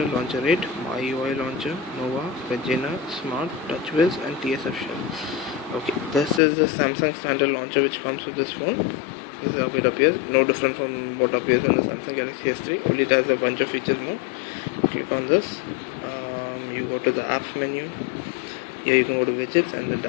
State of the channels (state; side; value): drops out; right; at 6.4 s